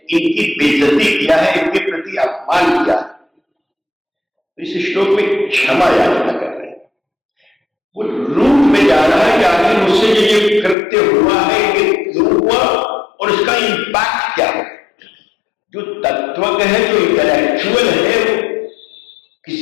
इनकी बेइज्जती किया है, इनके प्रति अपमान किया है। इस श्लोक में क्षमा याचना कर रहे हैं, वो रूप में जा रहा है कि आखिर मुझसे जो ये कृत्य हुआ है ये क्यों हुआ और इसका इंपैक्ट क्या है। जो तत्वज्ञ है, जो इंटेलेक्चुअल है, वो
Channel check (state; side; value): drops out; right; at 10.8 s